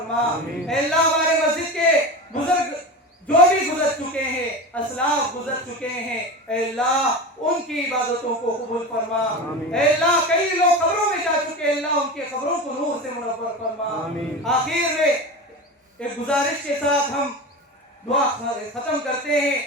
اے اللہ ہمارے مسجد کے بزرگ جو بھی گزر چکے ہیں، اسلاف گزر چکے ہیں، اے اللہ ان کی عبادتوں کو قبول فرما، اے اللہ کئی لوگ قبروں میں جا چکے ہیں، اللہ ان کے قبروں کو نور سے منور فرما۔ آخر میں ایک گزارش کے ساتھ ہم دعا ختم کرتے ہیں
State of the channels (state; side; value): normal; both; correlation 0.27